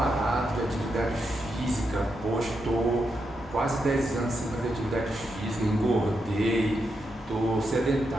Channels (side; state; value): both; normal; correlation 0.84